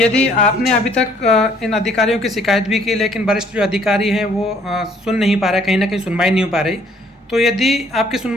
आपने अभी तक इन अधिकारियों की शिकायत भी की, लेकिन वरिष्ठ जो अधिकारी हैं वो सुन नहीं पा रहे, कहीं ना कहीं सुनवाई नहीं हो पा रही, तो यदि आपकी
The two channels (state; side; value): normal; both; correlation 0.62